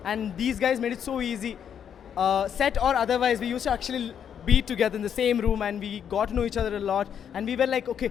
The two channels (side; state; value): right; quieter; 8.4 dB